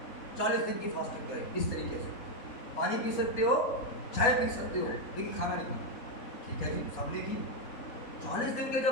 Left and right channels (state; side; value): late; right; 4.1 ms